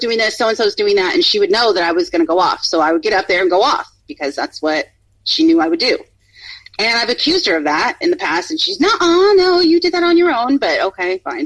this, so-and-so's doing that, and she would know that I was going to go off. So I would get up there and go off, because that's what she knew I would do. And I've accused her of that in the past, and she's, no, you did that on your own, but okay, fine.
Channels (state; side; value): identical; both; correlation 1.00